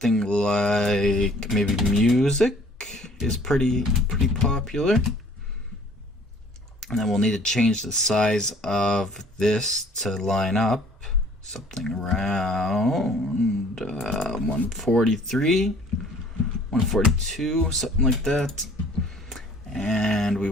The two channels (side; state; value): both; normal; correlation 0.55